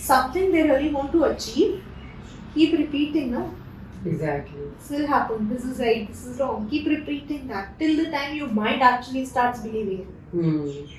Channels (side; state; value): both; identical; correlation 1.00